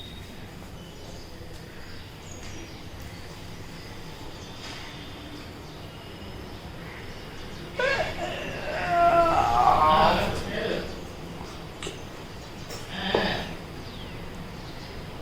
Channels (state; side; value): identical; both; correlation 1.00